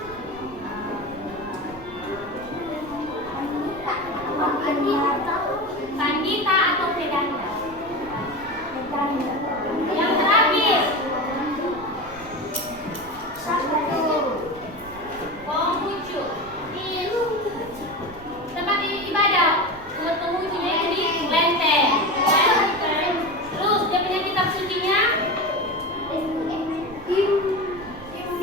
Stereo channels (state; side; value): noise; right; rumble, 20 dB below the sound